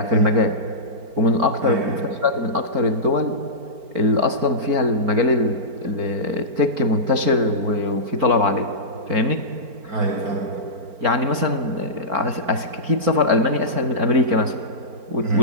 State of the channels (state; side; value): late; left; 4.4 ms